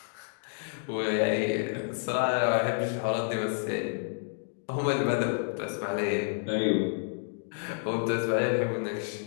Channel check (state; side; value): silent; right; digital silence